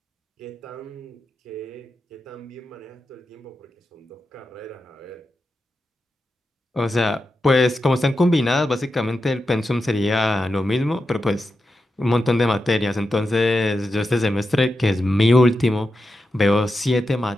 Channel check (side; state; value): both; normal; correlation 0.89